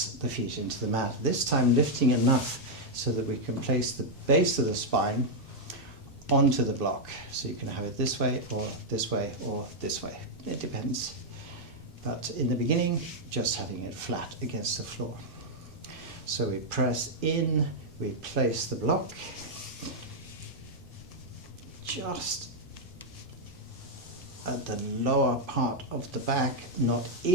the feet into the mat, this time lifting enough so that we can place the base of the spine onto the block. So you can have it this way or this way or this way. It depends. But in the beginning, just having it flat against the floor. So we press in, we place the block just at the lower part of the back, not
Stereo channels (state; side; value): normal; both; correlation -0.02